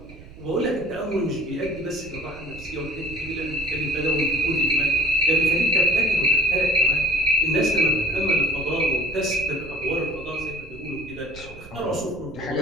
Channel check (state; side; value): noise; right; rumble, 18 dB below the sound